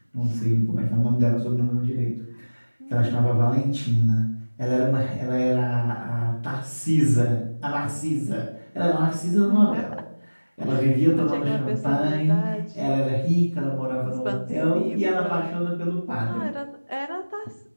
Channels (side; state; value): both; inverted; correlation -1.00